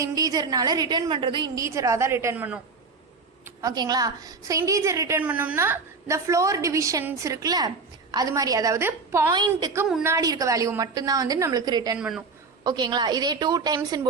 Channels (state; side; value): quieter; left; 4.5 dB